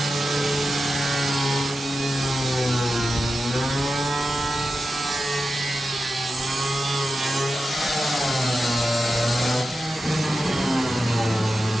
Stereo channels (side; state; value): both; normal; correlation 0.91